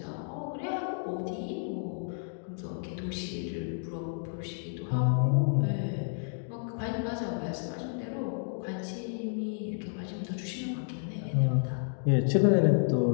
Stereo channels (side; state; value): right; silent; digital silence